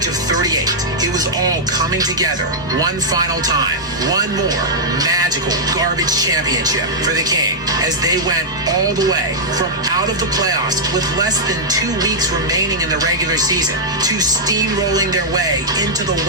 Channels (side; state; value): both; normal; correlation -0.06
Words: of 38, it was all coming together one final time, one more magical garbage championship for the King, as they went all the way from out of the playoffs with less than 2 weeks remaining in the regular season to steamrolling their way into the